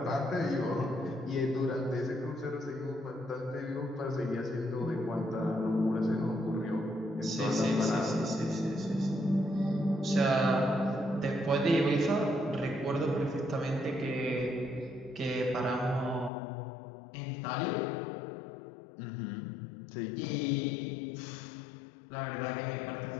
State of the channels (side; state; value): right; drops out; at 16.3 s